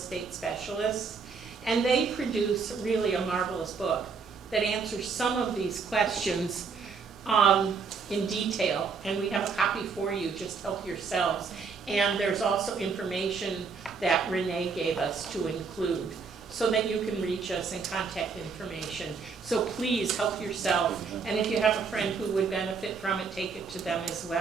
Specialists. And they produce really a marvelous book that answers some of these questions in detail. And we have a copy for you, just help yourselves. And there's also information that Renee gave us to include so that you can reach us and contact information. So please help yourself. And if you have a friend who would benefit from it, take it to them as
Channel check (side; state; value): left; quieter; 5.2 dB